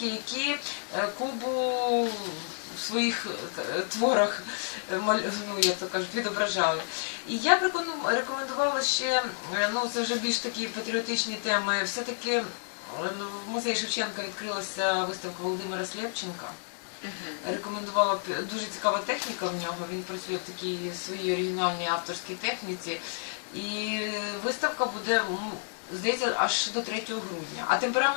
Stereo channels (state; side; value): silent; right; 58 dB below the other